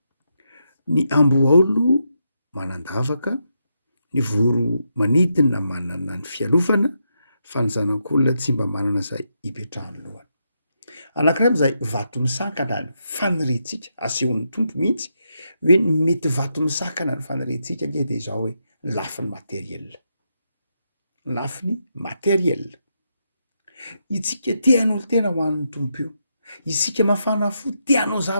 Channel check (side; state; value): both; inverted; correlation -0.82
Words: ny amboaolo manandavaka, ny voro manidina manana ny fialofana, fa ny zanak'olona tsy mba manana izay hipetrahany lohany. Anankiray amin'izay vato misakana ny faniriantsika, asehon'ny tompo mihitsy hoe mety vato misakana ny faniriantsika dia izao hoe ny lafiny materiela. Ny lafiny materiela. Itsika te hanao tena ho an'ny tompo io. Isika mafana fo te hanao